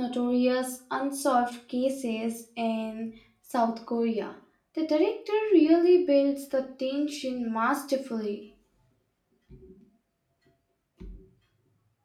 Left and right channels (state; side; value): identical; both; correlation 1.00